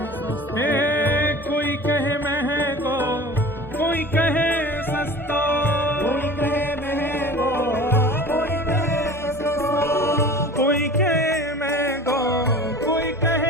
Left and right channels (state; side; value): normal; both; correlation 0.40